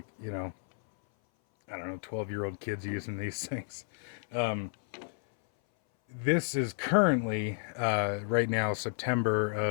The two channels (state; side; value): silent; right; 57 dB below the other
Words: I don't know, 12-year-old kids using these things. This is currently, right now, September